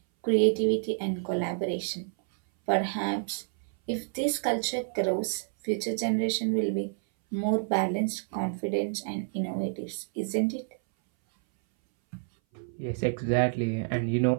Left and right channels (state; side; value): silent; left; 59 dB below the other